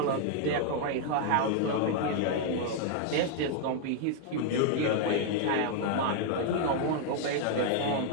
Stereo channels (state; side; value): different; both; correlation -0.01